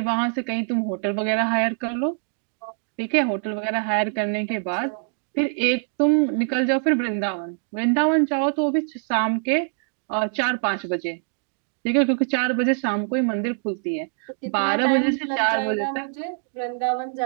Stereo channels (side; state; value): left; silent; digital silence